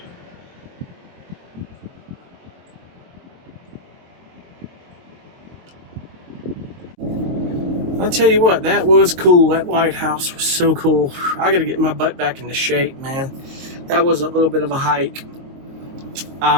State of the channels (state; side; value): late; left; 23 ms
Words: I'll tell you what, that was cool. That lighthouse was so cool. I gotta get my butt back into shape, man. That was a little bit of a hike.